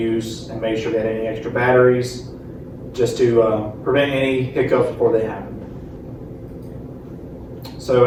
and made sure we had any extra batteries just to prevent any hiccups before they happened. So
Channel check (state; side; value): identical; both; correlation 1.00